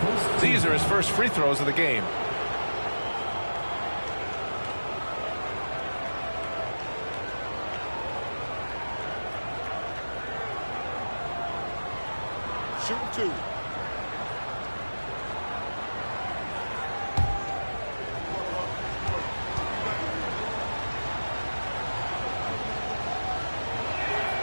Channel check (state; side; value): inverted; both; correlation -1.00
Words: These are his first free throws of the game. Shooting 2.